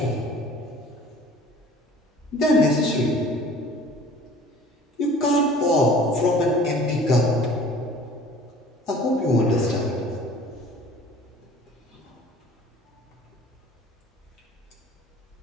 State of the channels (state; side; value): normal; both; correlation 0.48